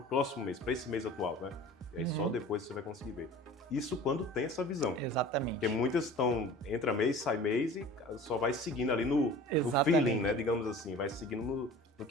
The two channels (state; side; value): normal; both; correlation 0.42